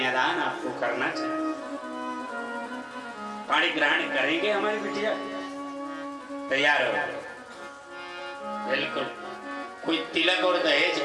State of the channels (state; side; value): identical; both; correlation 1.00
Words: आपको करना चाहिए। पाणी ग्रहण करेंगे हमारी बिटिया? तैयार हो? बिल्कुल। कोई तिलक और दहेज